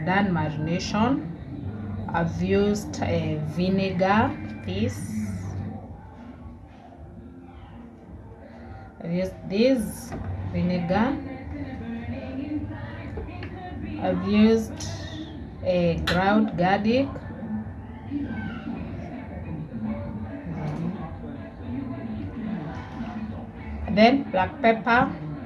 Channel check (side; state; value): both; identical; correlation 1.00